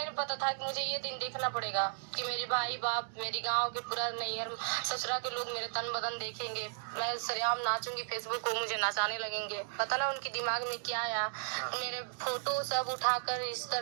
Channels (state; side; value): silent; left; digital silence